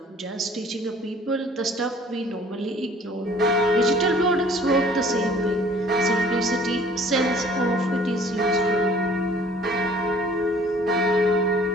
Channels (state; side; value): normal; both; correlation 0.53